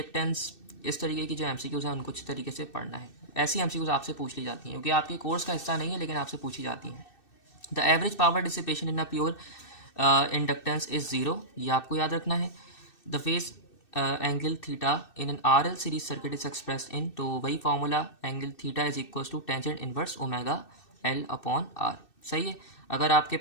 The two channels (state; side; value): late; right; 2.6 ms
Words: इस तरीके की जो एमसीक्यूज हैं उनको अच्छी तरीके से पढ़ना है। ऐसी एमसीक्यूज आपसे पूछ ली जाती हैं, क्योंकि आपके कोर्स का हिस्सा नहीं है लेकिन आपसे पूछी जाती हैं। The average power dissipation in a pure inductance is 0, ये आपको याद रखना है। The phase angle theta in an R L series circuit is express in, तो वही formula angle theta is equal to tangent inverse omega L/r। सही है। अगर आपके